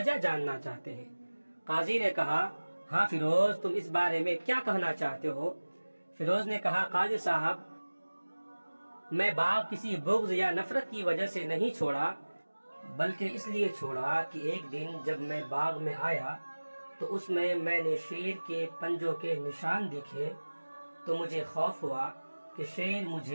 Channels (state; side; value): inverted; both; correlation -1.00